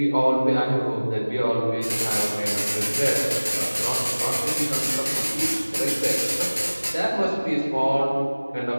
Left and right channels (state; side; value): inverted; both; correlation -1.00